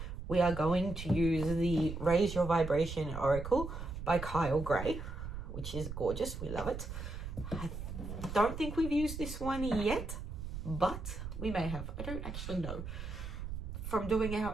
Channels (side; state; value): right; noise; rumble, 7 dB below the sound